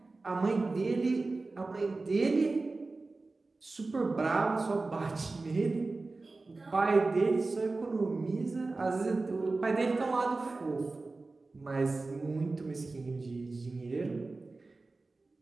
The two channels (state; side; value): quieter; left; 3.5 dB